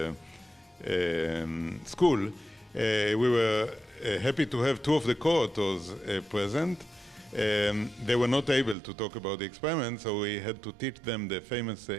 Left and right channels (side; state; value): left; drops out; at 8.8 s